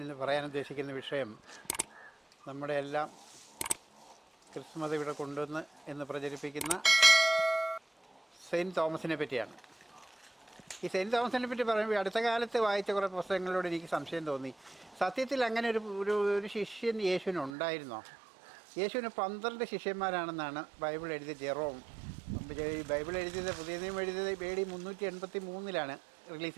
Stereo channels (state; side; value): drops out; left; at 17.5 s